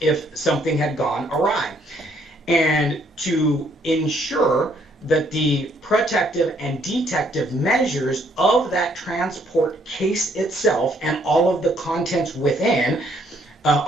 something had gone awry. And to ensure that the protective and detective measures of that transport case itself and all of the contents within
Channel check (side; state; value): both; normal; correlation 0.67